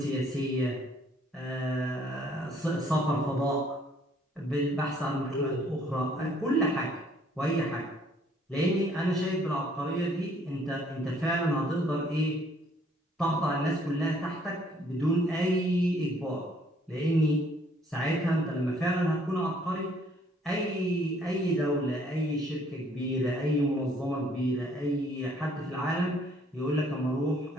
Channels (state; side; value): normal; both; correlation 0.62